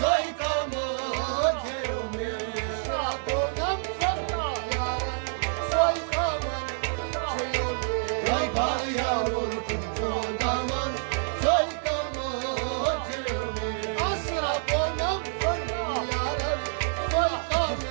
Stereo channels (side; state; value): left; silent; digital silence